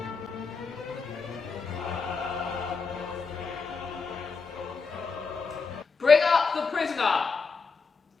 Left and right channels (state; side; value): quieter; right; 4.8 dB